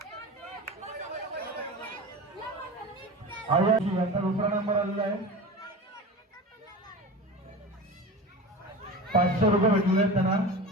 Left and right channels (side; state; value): both; normal; correlation 0.31